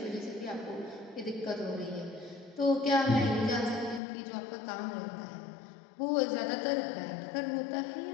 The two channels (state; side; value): drops out; right; at 4.0 s